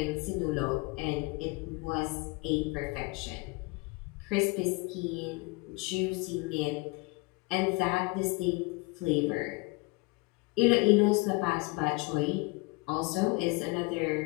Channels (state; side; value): quieter; right; 26.3 dB